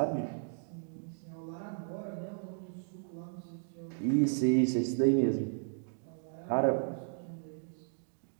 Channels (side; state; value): left; silent; digital silence